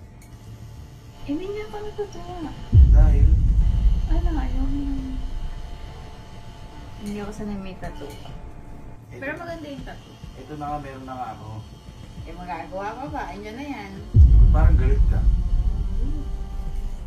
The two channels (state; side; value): identical; both; correlation 1.00